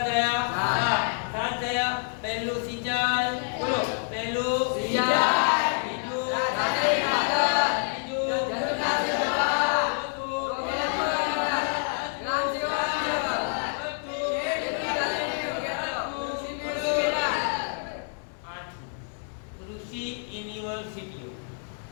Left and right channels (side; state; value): right; silent; 60 dB below the other